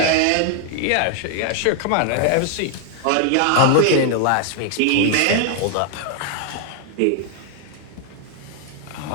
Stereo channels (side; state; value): both; different; correlation 0.00